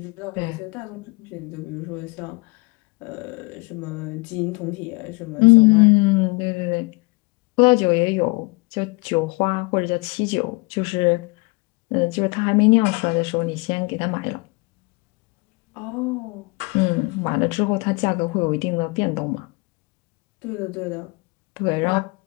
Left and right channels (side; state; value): right; quieter; 27.4 dB